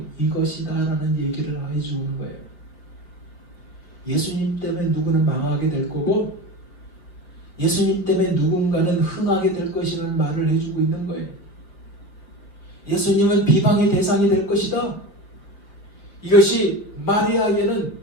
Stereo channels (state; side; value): late; right; 5.0 ms